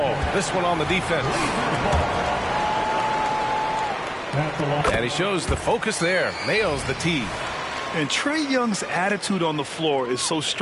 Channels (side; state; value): both; identical; correlation 1.00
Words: This one on the defense. And he shows the focus there. Nails the tee. And Trae Young's attitude on the floor is so